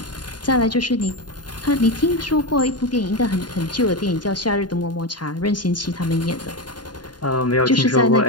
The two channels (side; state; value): right; late; 0.70 ms